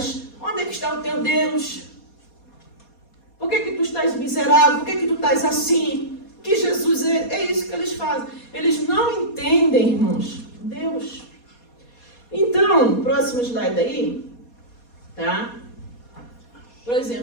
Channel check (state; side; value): late; right; 4.2 ms